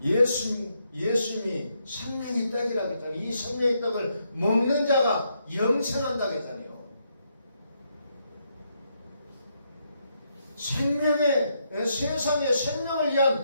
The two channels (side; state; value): both; inverted; correlation -0.78